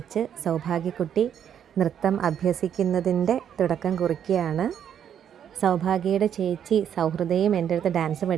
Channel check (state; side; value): quieter; left; 9.0 dB